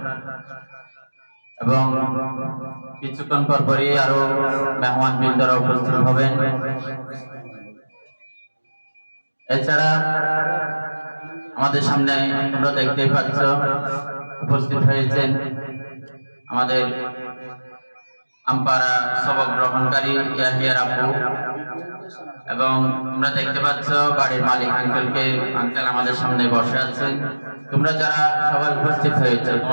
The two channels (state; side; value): inverted; both; correlation -1.00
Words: এবং কিছুক্ষণ পরপরই আরো মেহমান বৃন্দরা উপস্থিত হবেন। এছাড়া আমাদের সামনে তোমরা দেখতেই পাচ্ছ উপস্থিত হয়েছেন আমাদের আমপাড়া সবক গ্রহণকারী ইয়াহিয়ার আপু, এবং তোমরা দেখতে পাচ্ছ বাড়ির মালিক আঙ্কেল আমাদের সামনে বসে আছেন। তোমরা যারা সবাই উপস্থিত হয়েছে